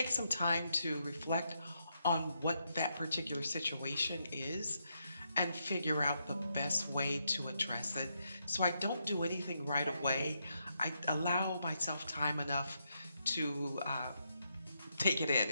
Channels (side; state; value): both; inverted; correlation -0.80